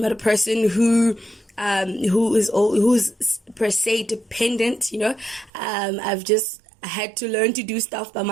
not a person who's per se dependent. I had to learn to do stuff by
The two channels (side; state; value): left; drops out; at 5.5 s